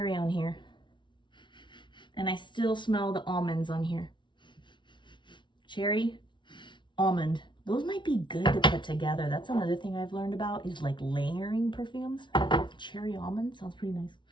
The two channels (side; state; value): right; late; 0.23 ms